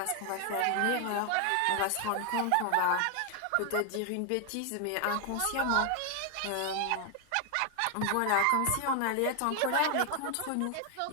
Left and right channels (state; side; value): different; both; correlation 0.00